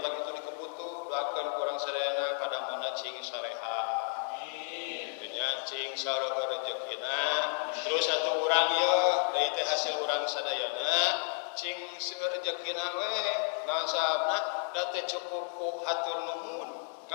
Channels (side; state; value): right; silent; 56 dB below the other